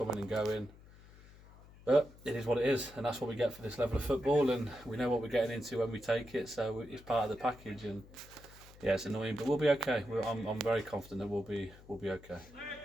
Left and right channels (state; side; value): noise; left; hum, 21 dB below the sound